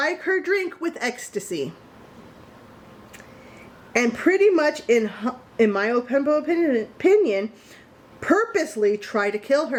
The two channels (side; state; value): both; identical; correlation 1.00